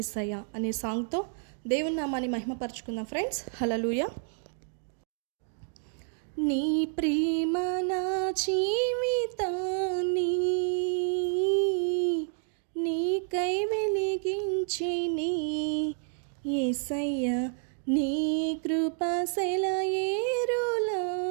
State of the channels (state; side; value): silent; left; 58 dB below the other